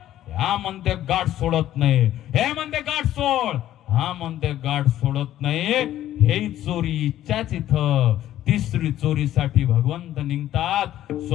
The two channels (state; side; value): quieter; right; 12.7 dB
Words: हा म्हणते गाठ सोडत नाही. हे म्हणते गाठ सोड, हा म्हणते गाठ सोडत नाही. हे चोरी इच्छाच इथं. तिसरी चोरीसाठी भगवंत निघतात,